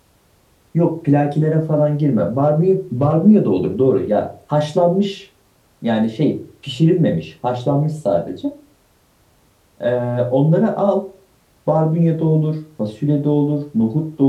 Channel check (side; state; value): both; identical; correlation 1.00